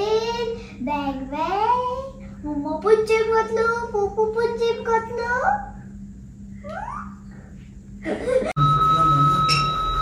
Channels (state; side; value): identical; both; correlation 1.00